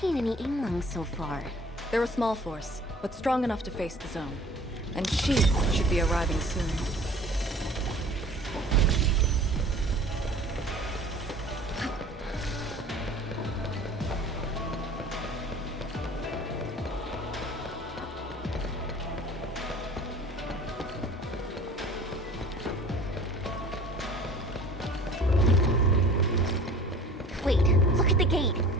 any Yinglong so far. They're a small force, but strong enough to face the zone. And she should be arriving soon. Wait, look at the gate.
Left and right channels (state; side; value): normal; both; correlation 0.46